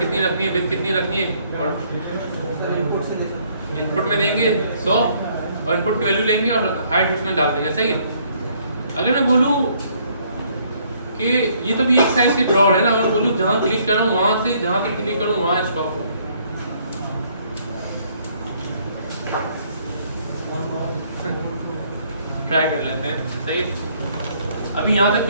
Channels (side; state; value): both; inverted; correlation -0.65